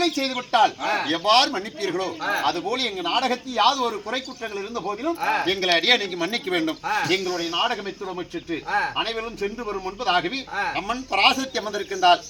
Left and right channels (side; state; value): both; identical; correlation 1.00